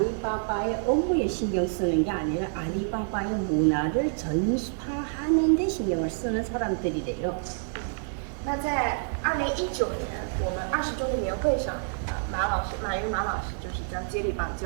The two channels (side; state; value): left; silent; digital silence